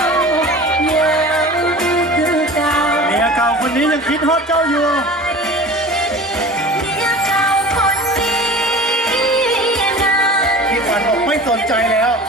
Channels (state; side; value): normal; both; correlation 0.38